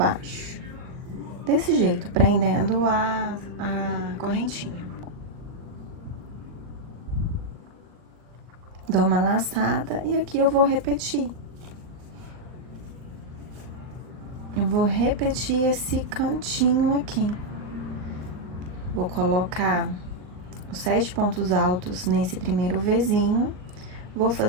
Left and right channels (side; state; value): left; late; 39 ms